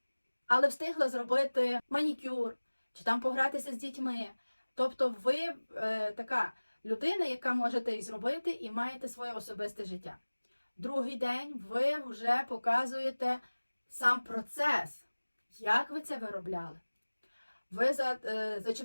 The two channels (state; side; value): inverted; both; correlation -1.00